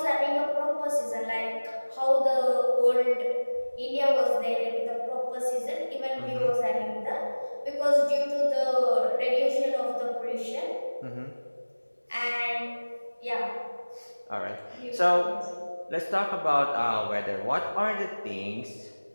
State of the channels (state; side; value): inverted; both; correlation -1.00